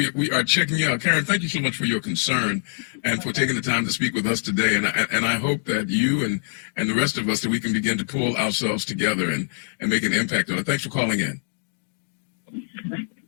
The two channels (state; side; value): silent; right; digital silence